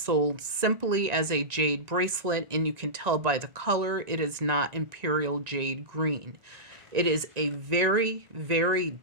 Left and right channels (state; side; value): late; left; 1.9 ms